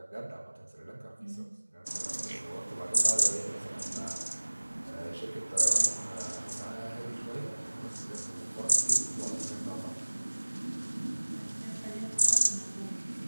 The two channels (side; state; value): both; inverted; correlation -1.00